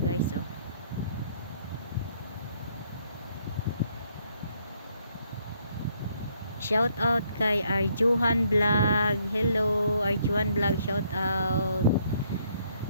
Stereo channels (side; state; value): both; inverted; correlation -0.69